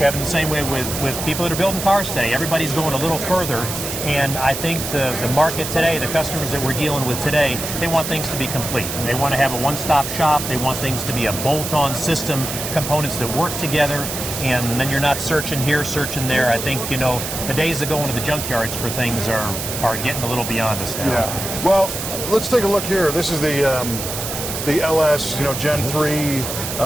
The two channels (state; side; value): noise; right; hiss, 5 dB below the sound